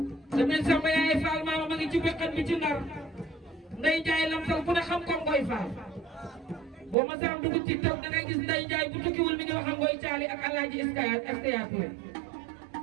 dameel Samba yaay Faal maamam a ngi ci bekkat bi ci Ndar Ndeye Ndiaye Lamsal ku ne xam ko Ngoy Faal boo ma saam dugg ci taw dangay gis Ndeye Ndiaye bu tukkiwul mi ngi wax ak Ngoy Caali ak Alaaji Iskaya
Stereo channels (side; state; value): left; drops out; at 7.0 s